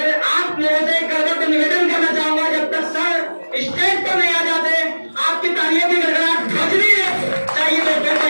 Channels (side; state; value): both; inverted; correlation -1.00